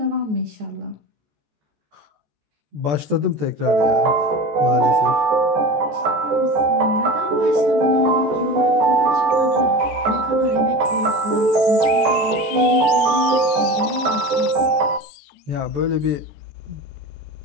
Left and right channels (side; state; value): left; late; 14 ms